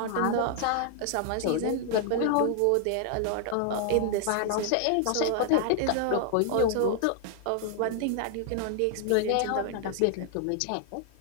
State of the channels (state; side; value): different; both; correlation 0.00